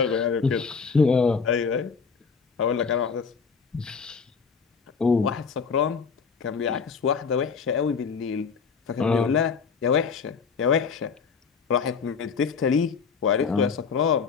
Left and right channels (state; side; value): quieter; right; 5.6 dB